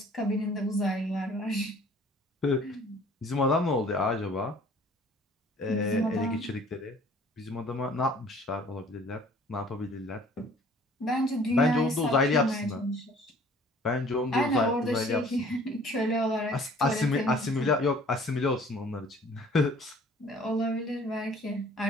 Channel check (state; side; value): normal; both; correlation 0.53